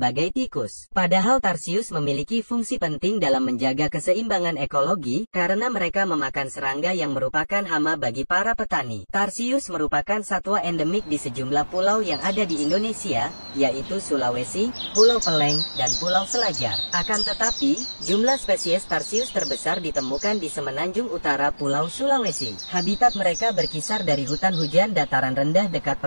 tikus. Padahal tarsius memiliki fungsi penting dalam menjaga keseimbangan ekologi karena mereka memakan serangga yang merupakan hama bagi para petani. Tarsius merupakan satwa endemik di sejumlah pulau yang ada di Indonesia, yaitu Sulawesi, Pulau Peleng, dan Pulau Selajar. Akan tetapi, jumlah spesies tarsius terbesar ditemukan di semenanjung utara Pulau Sulawesi. Habitat mereka berkisar dari hutan hujan dataran rendah dekat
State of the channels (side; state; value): both; inverted; correlation -1.00